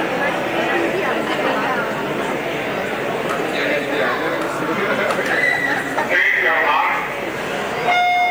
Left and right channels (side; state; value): both; identical; correlation 1.00